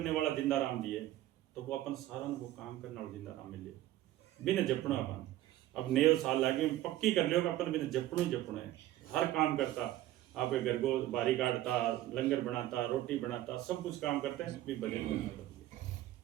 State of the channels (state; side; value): quieter; left; 14.5 dB